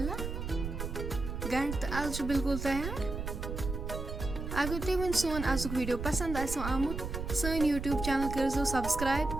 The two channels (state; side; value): noise; right; rumble, 5 dB below the sound